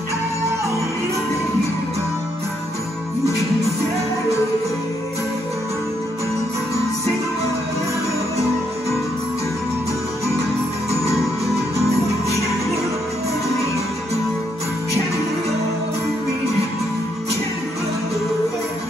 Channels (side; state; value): both; normal; correlation 0.75